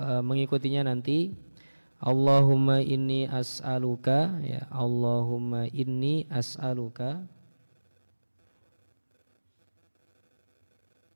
nanti. Allahumma inni as'aluka, ya Allahumma inni as'aluka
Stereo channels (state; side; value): inverted; both; correlation -1.00